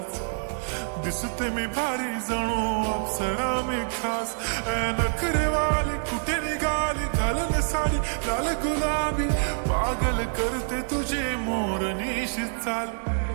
दिसते मी भारी जणू अप्सरा मी खास. नखरेवाली कुठे निघाली घालून साडी लाल गुलाबी, पागल करते तुझे मोरनीशी चाल.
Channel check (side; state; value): left; silent; digital silence